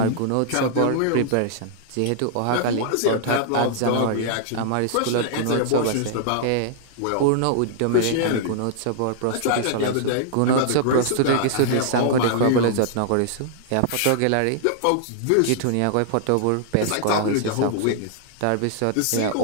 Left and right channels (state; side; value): different; both; correlation -0.01